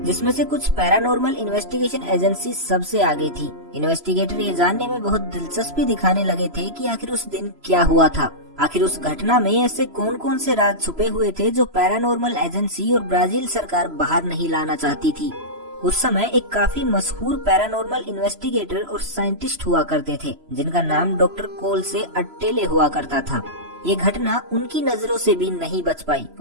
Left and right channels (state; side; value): late; left; 3.0 ms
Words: जिसमें से कुछ पैरानॉर्मल इन्वेस्टिगेशन एजेंसी सबसे आगे थी। इन्वेस्टिगेटर ये जानने में बहुत दिलचस्पी दिखाने लगे थे कि आखिर उस दिन क्या हुआ था। आखिर उस घटना में ऐसे कौन कौन से राज छुपे हुए थे जो पैरानॉर्मल एजेंसी और ब्राजील सरकार बाहर नहीं लाना चाहती थी। उस समय एक काफी मशहूर पैरानॉर्मल इन्वेस्टिगेटर और साइंटिस्ट हुआ करते थे, जिनका नाम डॉक्टर कोल से अट्टेले हुआ करता था। ये घटना उनकी नजरों से भी नहीं बच पाई